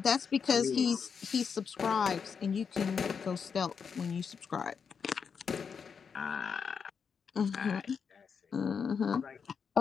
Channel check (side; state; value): right; quieter; 6.3 dB